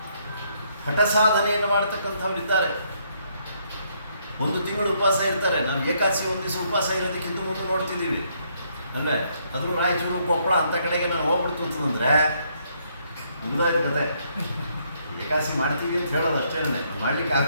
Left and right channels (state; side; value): inverted; both; correlation -0.71